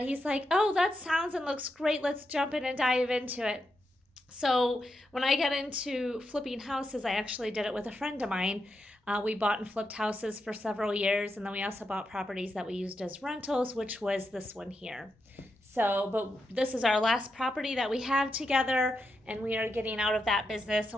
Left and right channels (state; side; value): normal; both; correlation 0.85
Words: he's like, oh, that sounds and looks great, let's jump in and dive into it. So when I got into flipping houses, I actually did it with a friend of mine. We bought and flipped houses for several years, and then we also bought properties that we used as rentals, which was this one here. So, but this is our last property that we have together, and we are getting out of that business. And